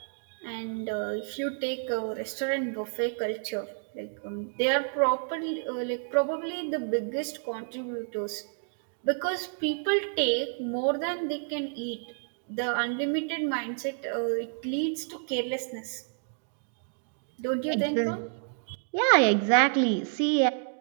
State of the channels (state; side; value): silent; left; digital silence